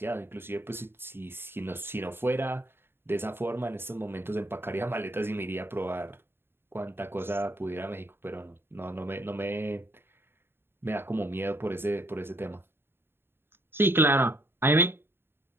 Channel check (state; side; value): late; left; 0.11 ms